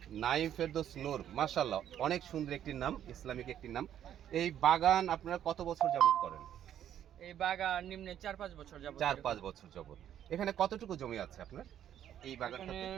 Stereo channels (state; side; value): quieter; left; 10.4 dB